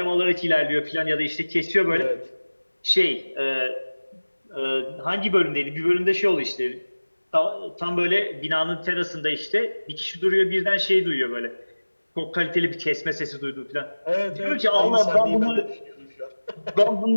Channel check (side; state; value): both; inverted; correlation -1.00